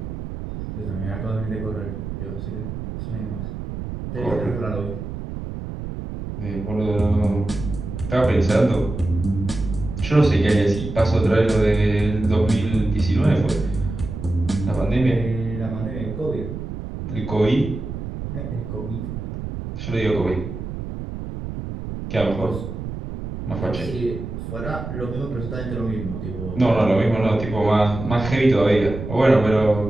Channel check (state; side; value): noise; right; rumble, 7 dB below the sound